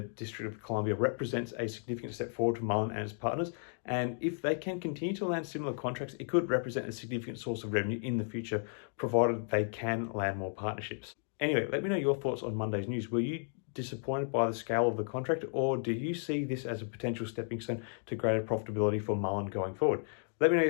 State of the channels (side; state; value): right; silent; 55 dB below the other